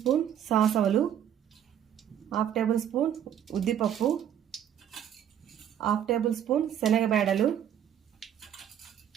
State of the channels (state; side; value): quieter; left; 9.8 dB